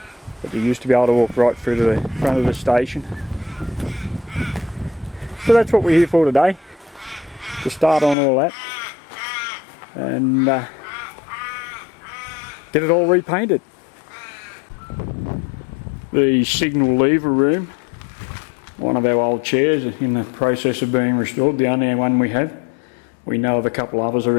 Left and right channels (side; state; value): right; drops out; at 8.2 s